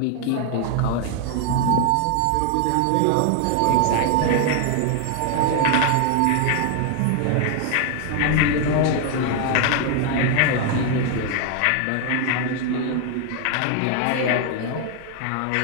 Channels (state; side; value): different; both; correlation 0.00